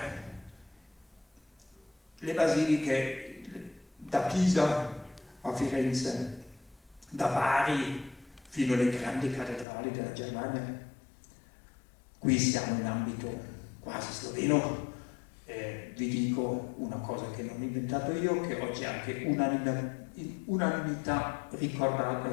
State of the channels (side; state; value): right; drops out; at 9.7 s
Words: le basiliche da Pisa a Firenze, da Bari fino alle grandi cattedrali della Germania. Qui siamo in ambito quasi sloveno. Vi dico una cosa che non ho inventato io, che oggi è anche unanimità